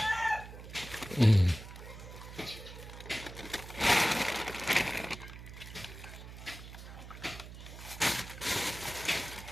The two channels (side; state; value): right; noise; hum, 13 dB below the sound